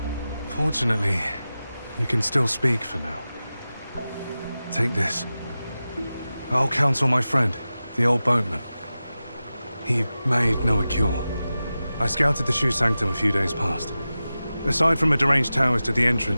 Fortunately, you can still speak for now. Take this. I'll counsel my friend, the old boatman. He made Noah cure. I scouted the Shu Sanctum a few days past. Aside from a deranged Taoist at the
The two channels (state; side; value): inverted; both; correlation -0.94